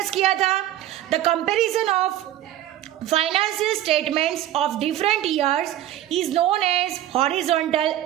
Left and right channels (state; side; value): quieter; left; 13.0 dB